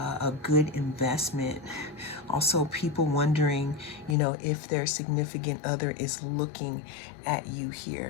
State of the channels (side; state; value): right; drops out; at 4.2 s